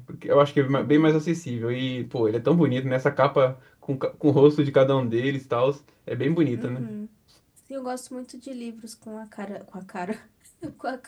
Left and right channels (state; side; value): identical; both; correlation 1.00